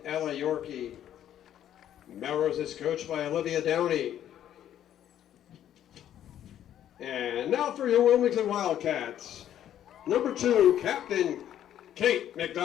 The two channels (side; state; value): right; quieter; 10.9 dB